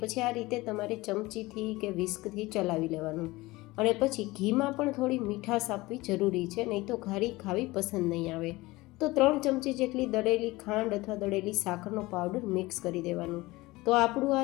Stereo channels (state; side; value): quieter; right; 20.5 dB